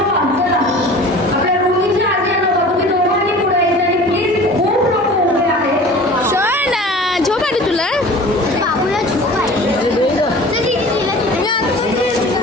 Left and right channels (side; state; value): both; normal; correlation 0.42